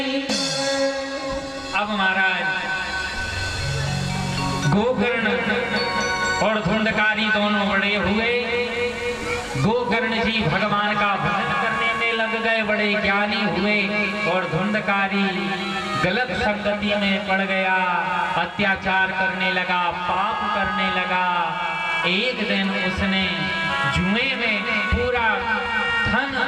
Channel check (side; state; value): both; identical; correlation 1.00